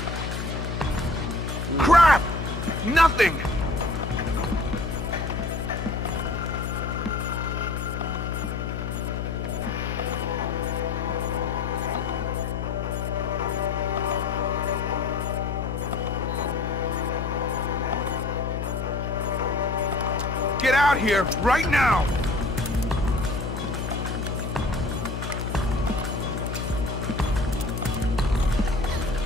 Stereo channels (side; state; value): left; noise; hum, 3 dB below the sound